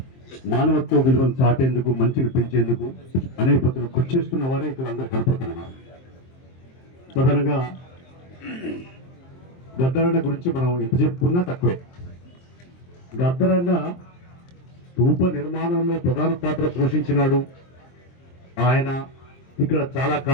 మానవత్వ విలువను చాటేందుకు, మంచిని పెంచేందుకు అనేక పద్ధతులు కృషి చేస్తున్న వారే ఇక్కడ అందరూ కనపడుతున్నారు. ప్రధానంగా గద్దరన్న గురించి మనం ఎంత చెప్పుకున్నా తక్కువే. గద్దరన్న స్తూప నిర్మాణంలో ప్రధాన పాత్ర పోషించినాడు. ఆయన ఇక్కడ చాలా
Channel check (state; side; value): late; right; 23 ms